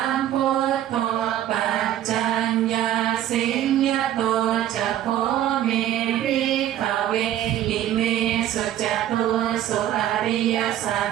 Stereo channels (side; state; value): left; quieter; 12.0 dB